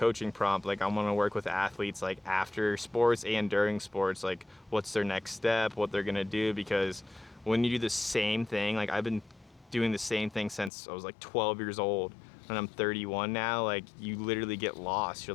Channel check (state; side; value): drops out; right; at 10.7 s